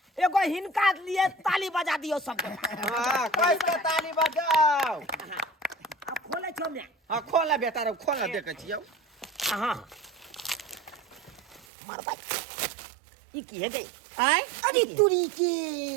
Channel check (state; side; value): drops out; left; at 11.7 s